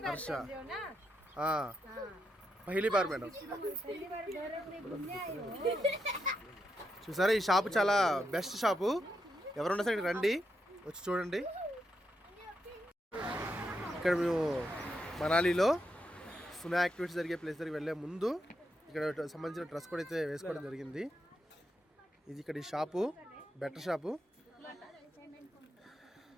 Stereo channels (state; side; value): normal; both; correlation 0.83